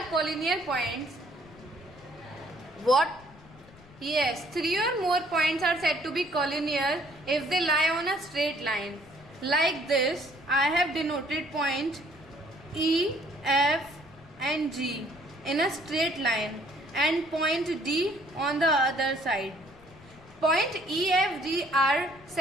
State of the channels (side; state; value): left; noise; rumble, 23 dB below the sound